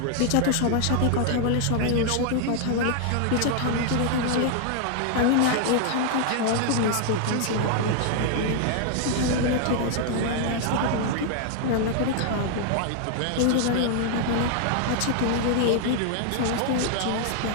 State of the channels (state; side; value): different; both; correlation 0.00